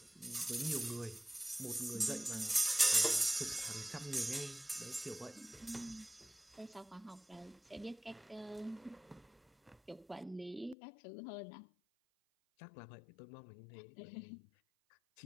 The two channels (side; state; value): right; drops out; at 10.8 s